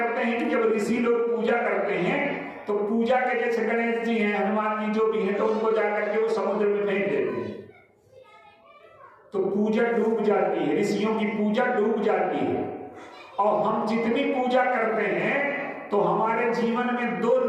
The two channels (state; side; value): identical; both; correlation 1.00